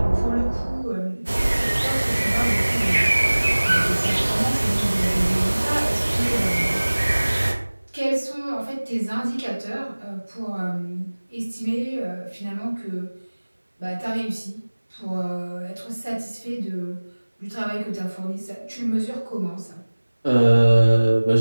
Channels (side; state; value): both; inverted; correlation -1.00